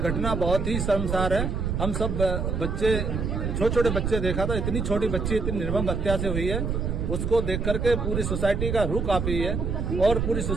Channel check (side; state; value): right; noise; rumble, 1 dB below the sound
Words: बहुत ही शर्मसार है। हम सब बच्चे, छोटे छोटे बच्चे देखा था, इतनी छोटी बच्ची इतनी निर्मम हत्या से हुई है, उसको देख करके पूरी सोसाइटी का रूह कांपी है और पूरी